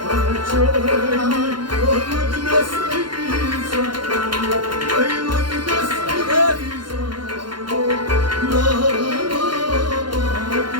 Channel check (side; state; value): left; late; 0.72 ms